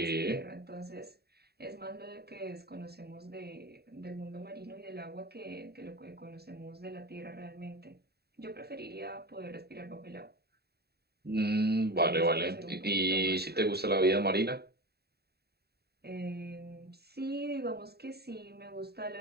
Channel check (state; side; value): late; left; 0.47 ms